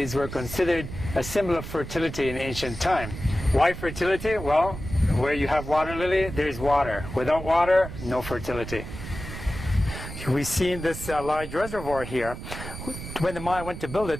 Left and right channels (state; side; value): noise; right; rumble, 9 dB below the sound